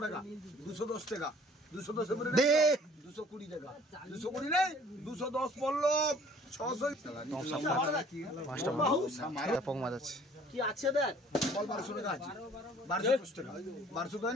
টাকা 210 টাকা 210 এর দে 220 টাকা 220 নেই 210 পল্লব 600 টাকা 5টা মাছ পং মাছ আছে কি আছে দেখ বল 1200 টাকা আছে 1210 টাকা 1200 টাকা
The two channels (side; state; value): both; normal; correlation 0.54